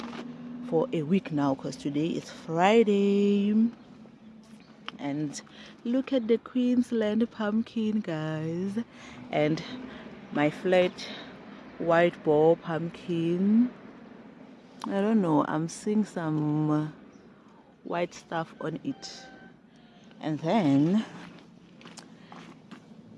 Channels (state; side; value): identical; both; correlation 1.00